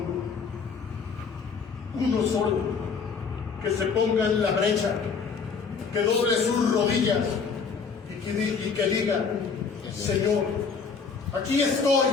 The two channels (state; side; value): quieter; right; 5.5 dB